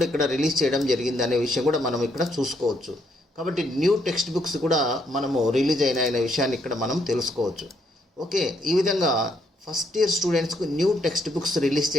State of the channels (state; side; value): normal; both; correlation 0.73